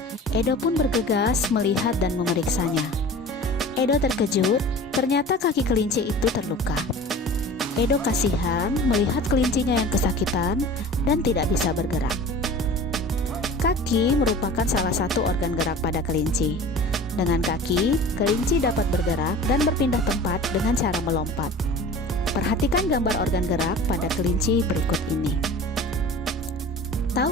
Edo pun bergegas melihat dan memeriksanya. Edo terkejut, ternyata kaki kelinci itu terluka. Edo kasihan melihat kelincinya yang kesakitan dan tidak bisa bergerak. Kaki merupakan salah satu organ gerak pada kelinci. Dengan kaki, kelinci dapat bergerak dan berpindah tempat dengan cara melompat. Perhatikan gambar organ gerak pada kelinci berikut ini.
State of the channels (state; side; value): normal; both; correlation 0.39